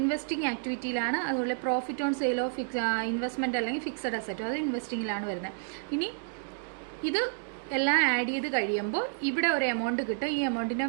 ആക്ടിവിറ്റിയിലാണ്. അതുപോലെ profit on sale of investment അല്ലെങ്കിൽ ഫിക്സഡ് അസറ്റ്, അത് ഇൻവെസ്റ്റിങ്ങിലാണ് വരുന്നത്. ഇനി ഇത് എല്ലാം ആഡ് ചെയ്ത് കഴിയുമ്പോൾ ഇവിടെ ഒരു എമൗണ്ട് കിട്ടും. ഈ എമൗണ്ടിൻ്റെ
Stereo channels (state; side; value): silent; left; digital silence